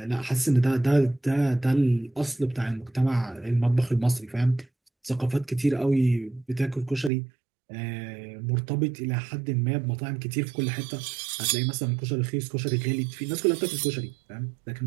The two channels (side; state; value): left; drops out; at 7.1 s